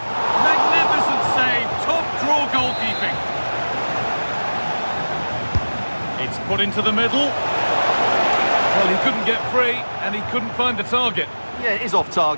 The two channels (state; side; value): inverted; both; correlation -1.00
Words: Magnificent save. Top draw goalkeeping. It's put into the middle. Well, he couldn't get free, and he couldn't find the target. Yeah, it is off